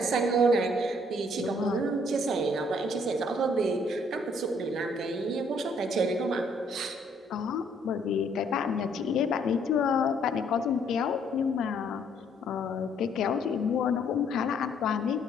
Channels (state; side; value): normal; both; correlation 0.65